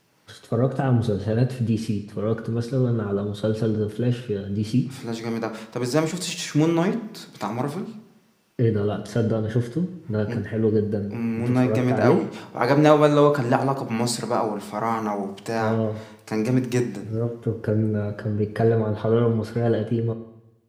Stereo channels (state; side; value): identical; both; correlation 1.00